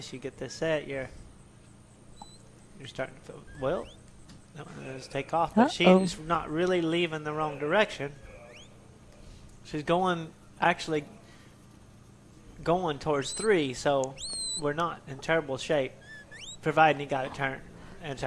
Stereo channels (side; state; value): both; identical; correlation 1.00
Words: you get this set, you're starting to feel, well, that one does take off, but she's not really leaving the wrong direction. She's actually going towards 3, so we're not in terrible shape, providing he got it turned, which